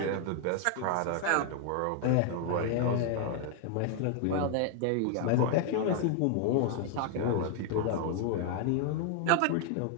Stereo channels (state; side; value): different; both; correlation 0.00